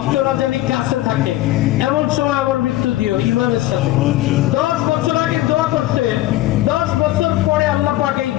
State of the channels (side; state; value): right; quieter; 16.1 dB